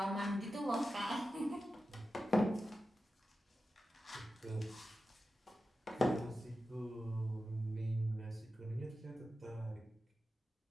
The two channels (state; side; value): normal; both; correlation 0.92